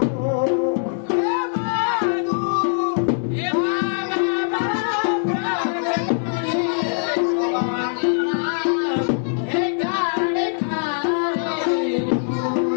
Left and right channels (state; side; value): silent; right; 64 dB below the other